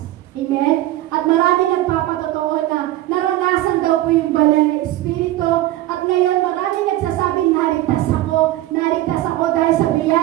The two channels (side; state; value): left; quieter; 15.5 dB